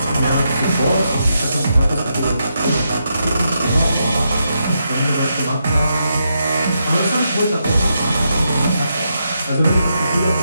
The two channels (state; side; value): inverted; both; correlation -0.82